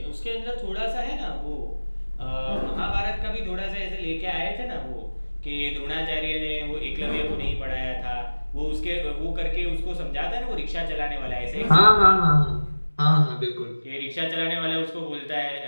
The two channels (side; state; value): both; inverted; correlation -1.00